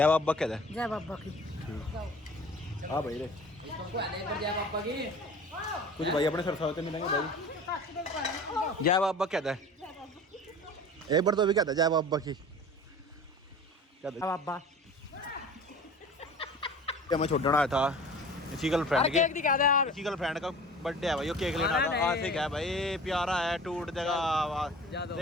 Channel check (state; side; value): normal; both; correlation 0.41